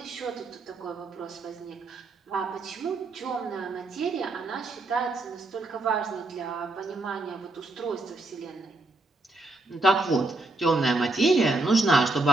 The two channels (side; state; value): left; quieter; 3.0 dB